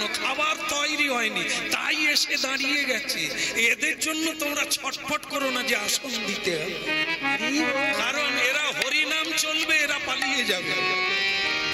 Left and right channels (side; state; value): both; identical; correlation 1.00